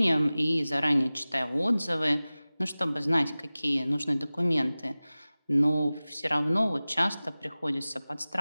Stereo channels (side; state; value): both; inverted; correlation -0.98